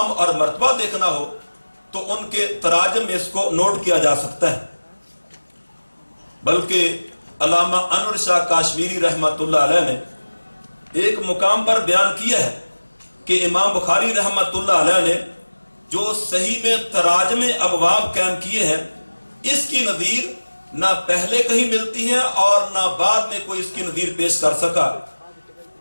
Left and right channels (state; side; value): inverted; both; correlation -1.00